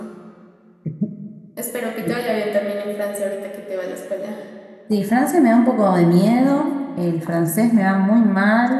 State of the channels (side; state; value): both; identical; correlation 1.00